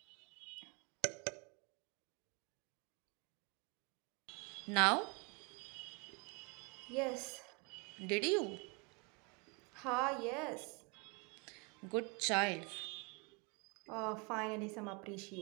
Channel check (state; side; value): quieter; left; 31.5 dB